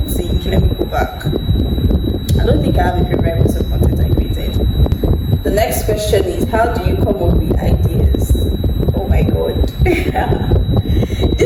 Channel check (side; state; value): both; identical; correlation 1.00